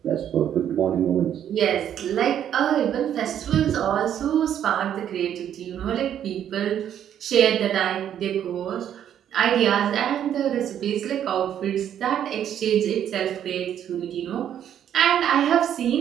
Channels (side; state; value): left; quieter; 9.9 dB